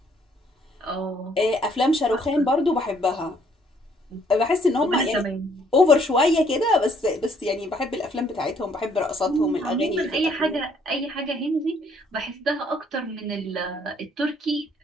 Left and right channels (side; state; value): both; normal; correlation 0.65